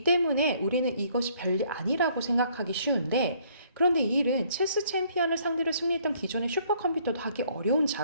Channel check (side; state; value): both; inverted; correlation -0.63